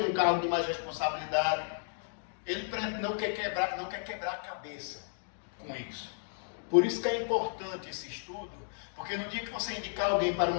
num cargo de mais responsabilidade. Ele não quer quebrar a cabeça. com isso. Por isso que é importante esse estudo, porque no dia que você indicar alguém para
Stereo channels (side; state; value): right; silent; digital silence